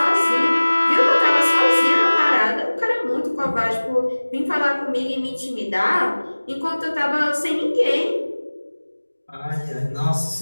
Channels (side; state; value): both; inverted; correlation -1.00